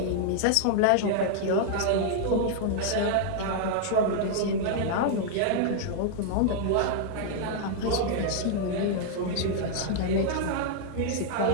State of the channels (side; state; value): both; different; correlation -0.01